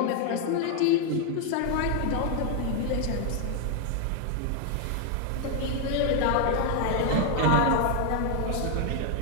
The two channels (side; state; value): both; different; correlation 0.00